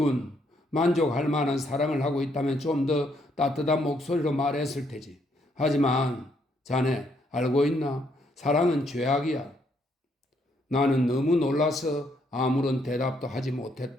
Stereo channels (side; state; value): both; normal; correlation 0.72